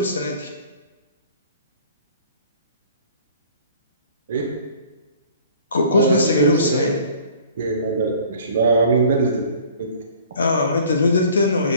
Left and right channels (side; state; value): both; inverted; correlation -0.51